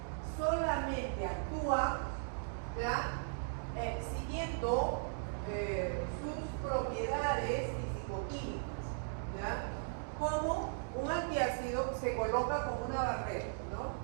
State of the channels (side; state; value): left; silent; digital silence